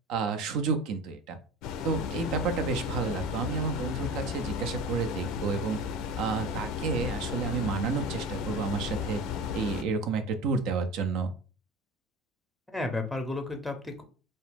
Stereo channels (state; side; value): normal; both; correlation 0.34